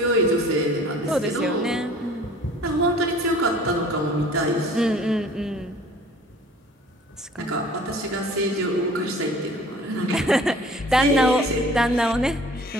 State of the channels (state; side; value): normal; both; correlation 0.50